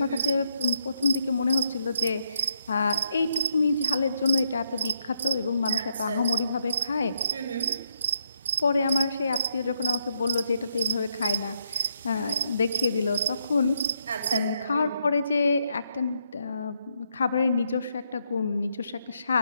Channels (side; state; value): both; inverted; correlation -0.77